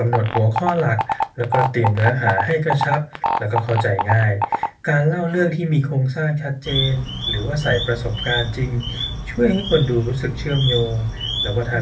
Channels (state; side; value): identical; both; correlation 1.00